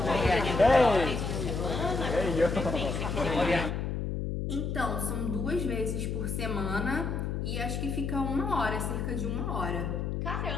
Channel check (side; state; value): left; noise; hum, 2 dB below the sound